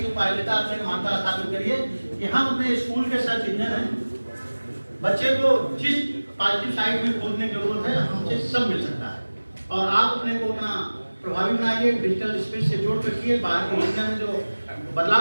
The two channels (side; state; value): both; inverted; correlation -1.00